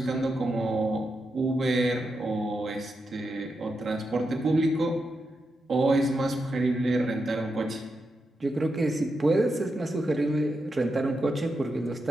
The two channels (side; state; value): both; normal; correlation 0.86